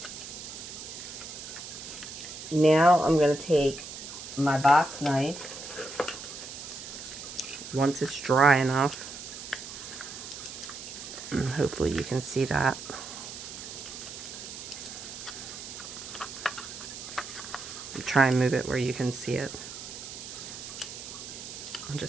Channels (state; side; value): noise; right; hiss, 10 dB below the sound